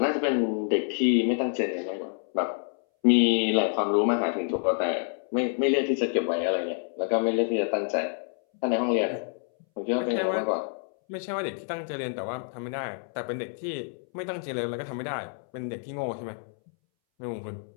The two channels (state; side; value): silent; right; 59 dB below the other